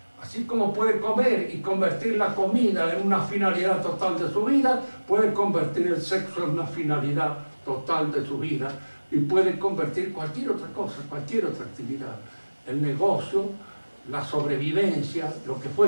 Así como puede comer y convertir la comida en una finalidad total de su vida, puede convertir el sexo en una finalidad total de su vida y puede convertir cualquier otra cosa, cualquier otra actividad. El negocio, la sobrevivencia, lo que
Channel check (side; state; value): both; inverted; correlation -1.00